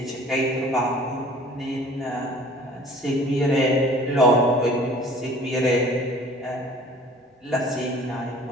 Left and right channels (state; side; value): normal; both; correlation 0.49